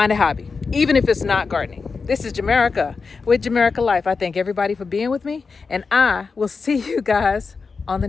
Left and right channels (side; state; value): right; quieter; 4.8 dB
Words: a hobby, even if it's not gardening. This is Jamerica with Jamerica Life. I thank everybody for being with me, and I will see you guys on the